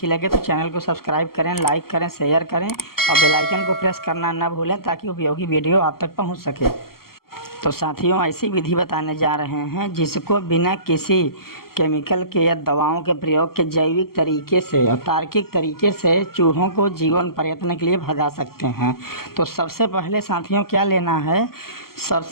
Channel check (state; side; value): late; right; 0.93 ms